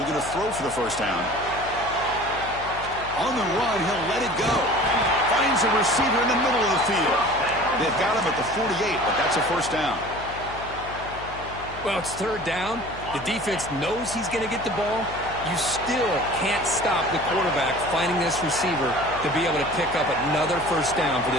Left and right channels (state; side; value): noise; left; hum, 14 dB below the sound